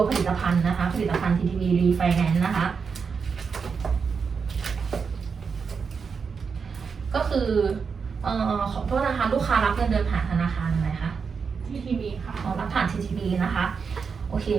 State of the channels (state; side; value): quieter; left; 5.7 dB